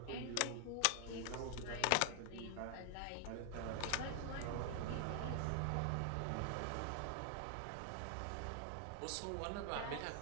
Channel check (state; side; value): different; both; correlation 0.00